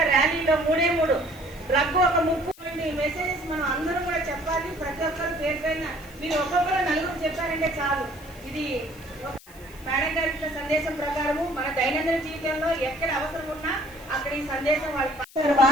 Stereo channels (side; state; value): left; noise; hiss, 22 dB below the sound